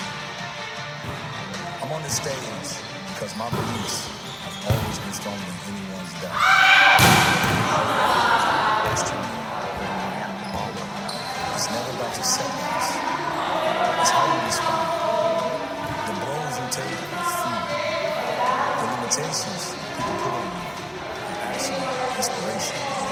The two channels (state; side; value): identical; both; correlation 1.00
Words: I'm on this stage because my beliefs have always been stronger than anyone's doubt. It's never about your setbacks. It's how you respond. The blows you take are food. The limitations people put on you are actually inspiration.